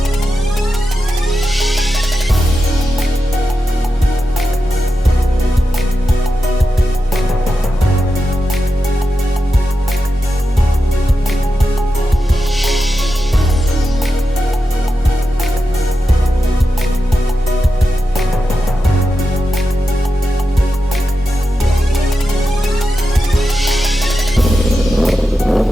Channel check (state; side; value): normal; both; correlation 0.89